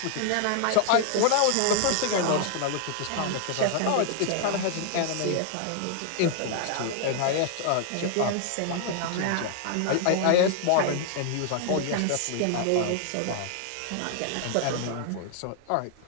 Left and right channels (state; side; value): different; both; correlation 0.00